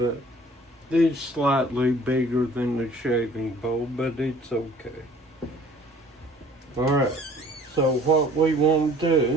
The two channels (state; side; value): normal; both; correlation 0.52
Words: it's slightly bigger than the shaving bowl, but it's okay. Alright, so what we want to